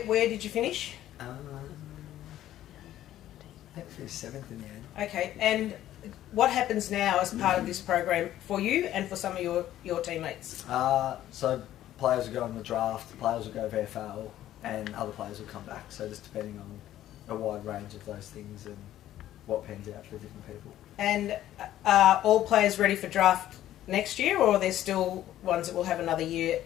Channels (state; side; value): quieter; right; 12.9 dB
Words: did you finish? I think we finished 7th in the end. Okay, and what happens now as part of this program for you and for some of your teammates? So players will go in the draft, players will go VFL, and other players will come back. So just depending on a wide range of those things and what pans out for different people. And are all players ready for draft next year, or are there still ones that will have another year